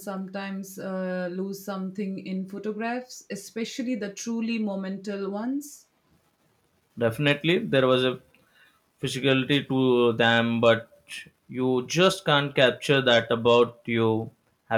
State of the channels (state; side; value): identical; both; correlation 1.00